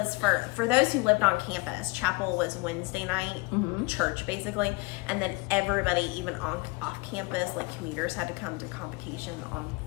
for those who lived on campus. Chapel was Wednesday night church basically, and then everybody, even off campus, like commuters, had to come to convocation on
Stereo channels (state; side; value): quieter; right; 26.4 dB